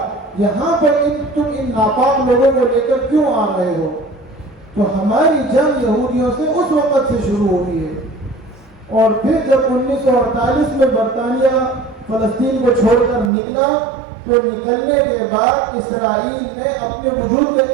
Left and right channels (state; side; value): drops out; left; at 13.3 s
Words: یہاں پر تم ان ناپاک لوگوں کو لے کر کیوں آ رہے ہو؟ تو ہماری جنگ یہودیوں سے اس وقت سے شروع ہوئی ہے۔ اور پھر جب 1948 میں برطانیہ فلسطین کو چھوڑ کر نکلا تو نکلنے کے بعد اسرائیل نے اپنے وجود کا